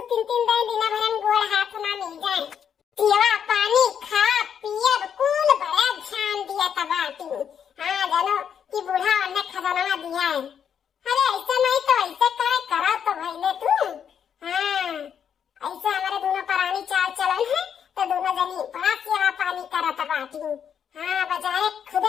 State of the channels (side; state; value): right; quieter; 8.1 dB